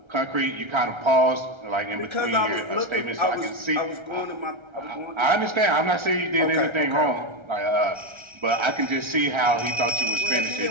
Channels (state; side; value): late; left; 1.3 ms